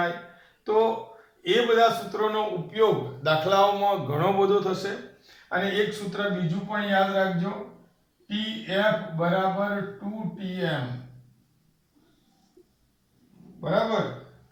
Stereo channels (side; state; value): both; identical; correlation 1.00